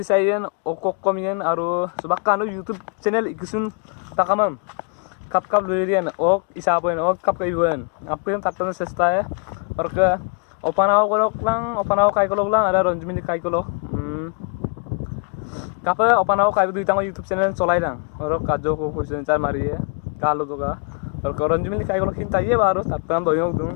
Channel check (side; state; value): right; quieter; 39.8 dB